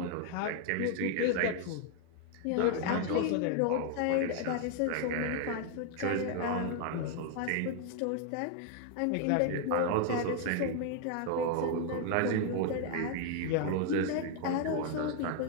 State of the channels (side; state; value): both; different; correlation 0.00